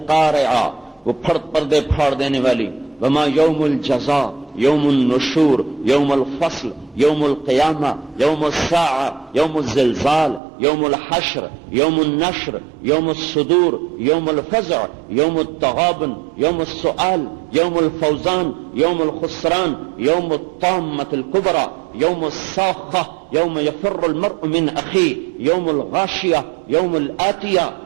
وہ پردے پھاڑ دینے والی، وما یوم الجزاء، یوم النشور، یوم الفصل، یوم القیامہ، یوم الساعہ، یوم الزلزال، یوم الحشر، یوم النشر، یوم الصدور، یوم الفزع، یوم التغابن، یوم السؤال، یوم الفوزان، یوم الخسران، یوم الطامة الكبرى، یوم الصاخة، یوم یفر المرء من اخیہ، یوم الغاشیہ، یوم الآتیہ.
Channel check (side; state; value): left; drops out; at 10.4 s